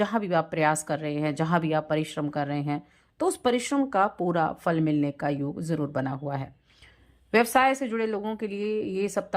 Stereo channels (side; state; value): both; identical; correlation 1.00